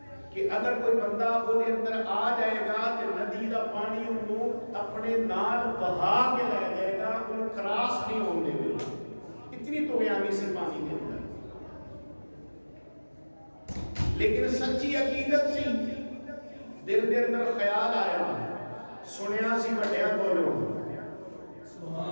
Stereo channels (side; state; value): both; inverted; correlation -1.00